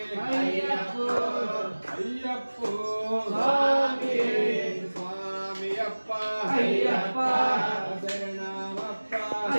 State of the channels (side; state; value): both; inverted; correlation -1.00